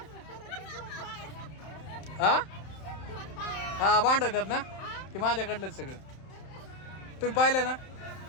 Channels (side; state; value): right; late; 31 ms